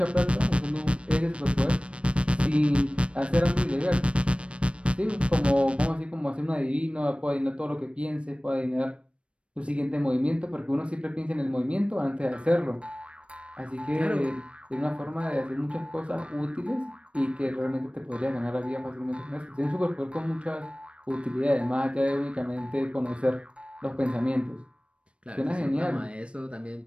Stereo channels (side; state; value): left; late; 0.060 ms